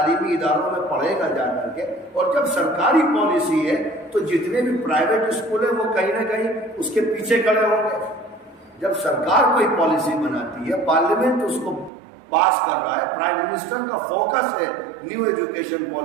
اداروں میں پڑھے گا جا کر کے، اور جب سرکاری پالیسی ہے تو جتنے بھی پرائیویٹ اسکول ہیں وہ کہیں نہ کہیں اس کے پیچھے کھڑے ہوں گے. جب سرکار کوئی پالیسی بناتی ہے، پارلیمنٹ اس کو پاس کر رہا ہے، پرائم منسٹر کا فوکس ہے نیو ایجوکیشن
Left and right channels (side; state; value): left; drops out; at 11.9 s